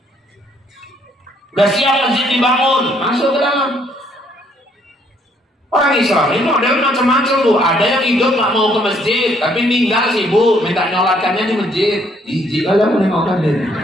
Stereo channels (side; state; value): both; normal; correlation 0.67